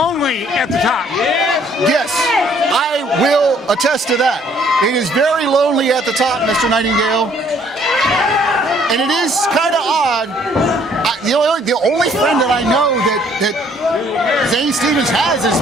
at the top. Yes, I will attest to that. It is very lonely at the top, Mr. Nightingale. And it is kind of odd. The only friend that I know that Zane Stevens has is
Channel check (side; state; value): both; normal; correlation 0.62